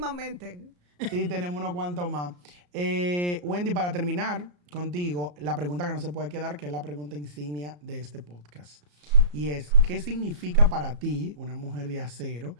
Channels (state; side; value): late; left; 34 ms